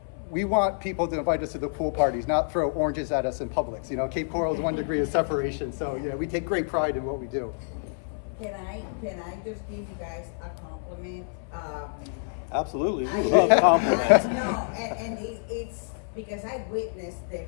want people to invite us to the pool parties, not throw oranges at us in Publix. You know, Cape Coral is 1 degree of separation. So yeah, we take great pride in what we do. Can I just give you guys a compliment? Absolutely, we love compliments. No, and it's because I witnessed the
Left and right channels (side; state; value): right; silent; 60 dB below the other